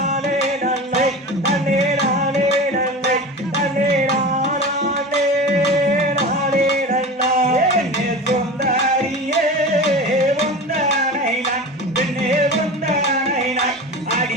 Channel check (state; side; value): normal; both; correlation 0.31